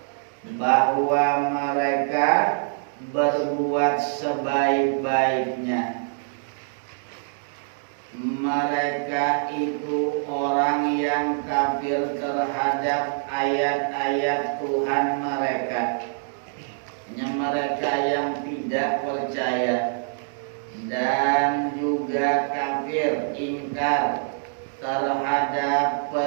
bahwa mereka berbuat sebaik-baiknya. Mereka itu orang yang kafir terhadap ayat-ayat Tuhan mereka. Mereka yang tidak percaya dan juga kafir, ingkar terhadap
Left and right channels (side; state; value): left; silent; digital silence